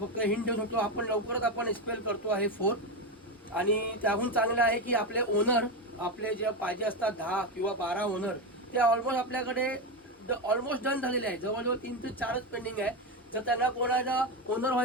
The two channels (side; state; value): both; normal; correlation 0.14